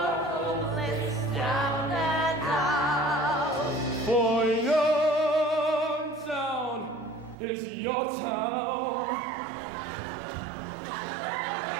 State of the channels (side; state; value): left; drops out; at 7.4 s